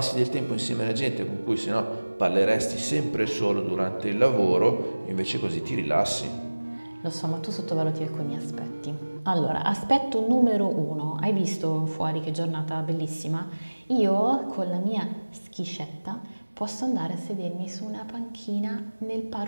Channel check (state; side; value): inverted; both; correlation -1.00